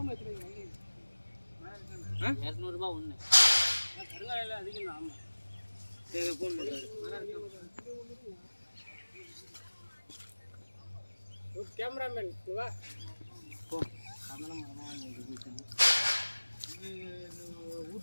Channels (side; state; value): both; inverted; correlation -1.00